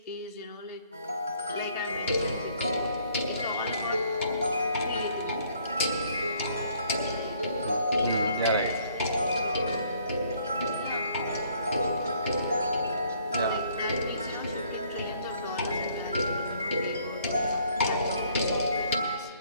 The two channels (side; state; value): both; inverted; correlation -0.63